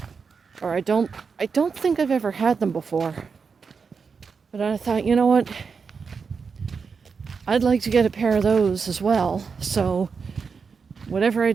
or I don't think I've ever had them before. But I thought, you know what, I'd like to get a pair of those as well. So whatever I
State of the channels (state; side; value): quieter; left; 5.5 dB